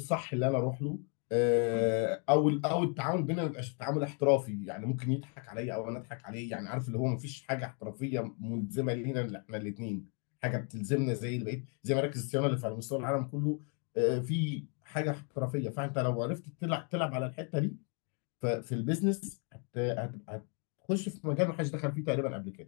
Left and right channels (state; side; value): quieter; right; 38.2 dB